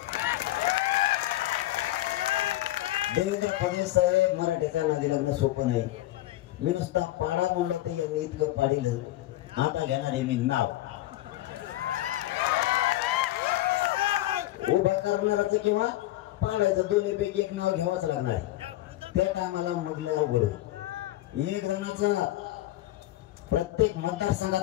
देवेंद्र फडणवीस साहेब, मराठ्याच्या नादी लागणं सोपं नाही. मी नुसता पाडा म्हणलं तर यांनी इतकं पाडिलं. आता घेणार आहे मी नाव. उभा करणाराचं किंवा पाडायचं दोन्हीपैकी एक नाव घ्यावंच लागणार आहे. त्या टायमाला मग लय अवघड होईल. 1 जणाचा प्रत्येक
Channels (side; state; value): right; quieter; 16.0 dB